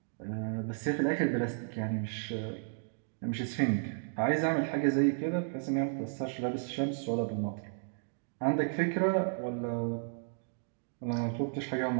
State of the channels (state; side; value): silent; left; digital silence